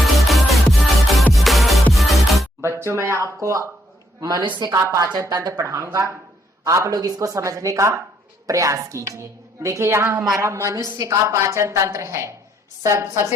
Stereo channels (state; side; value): normal; both; correlation 0.73